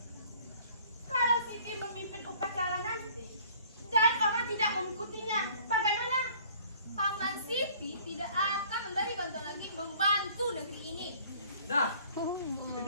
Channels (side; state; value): both; inverted; correlation -0.54